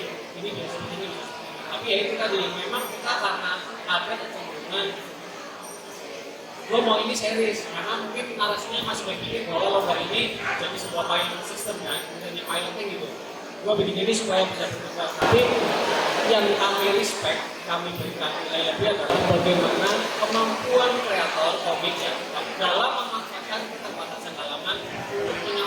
ini bisa seperti ini. Tapi ya itu tadi memang kita karena ada kecenderungan lo mau ini series karena mungkin narasinya masih berpikir bahwa lomba ini jadi sebuah pilot system kan, menjadi piloting gitu. Gua bikin ini supaya bisa berkembang. Tapi yang kami respect, kami berikan nilai lebih adalah bagaimana kemampuan kreator komik ya dalam memanfaatkan keterbatasan halaman untuk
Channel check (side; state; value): both; identical; correlation 1.00